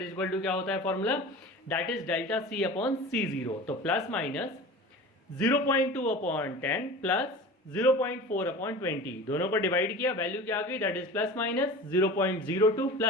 is equal to क्या होता है formula? That is delta C upon C0। तो plus minus 0.2 upon 10 plus 0.4 upon 20, दोनों को डिवाइड किया, वैल्यू क्या आ गई? That is plus minus 0.02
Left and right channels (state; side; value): normal; both; correlation 0.36